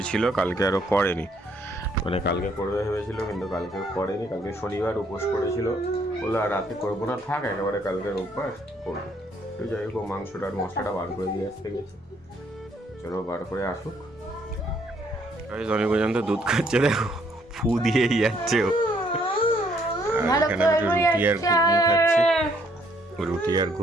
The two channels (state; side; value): normal; both; correlation 0.67